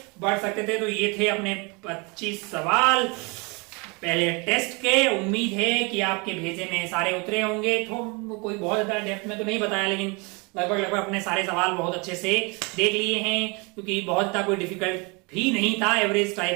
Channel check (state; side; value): quieter; left; 29.7 dB